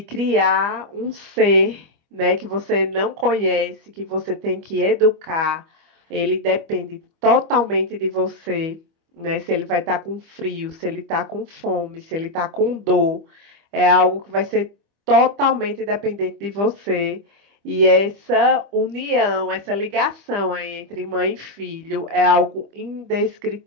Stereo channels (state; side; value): late; left; 25 ms